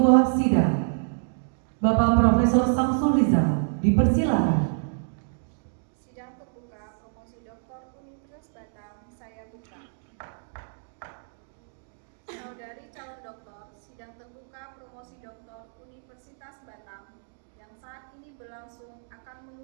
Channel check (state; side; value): silent; left; digital silence